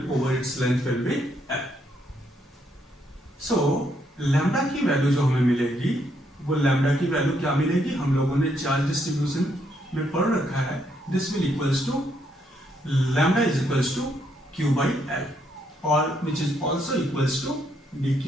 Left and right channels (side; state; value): both; normal; correlation 0.74